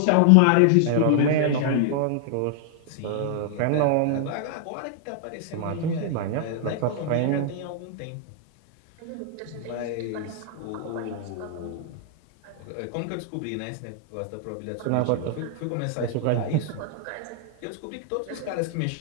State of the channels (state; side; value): different; both; correlation -0.01